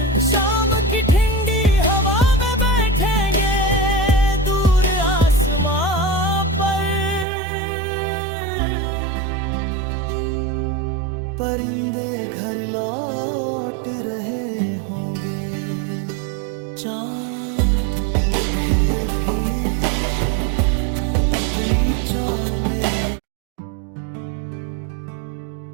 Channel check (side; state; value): left; drops out; at 7.2 s